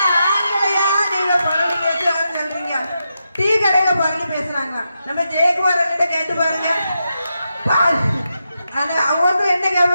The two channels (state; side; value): inverted; both; correlation -0.86